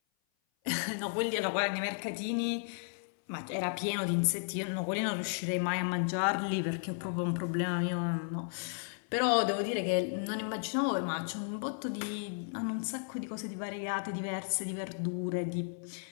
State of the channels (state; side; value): silent; right; 55 dB below the other